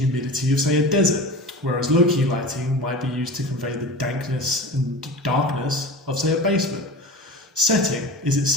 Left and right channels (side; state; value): both; normal; correlation 0.32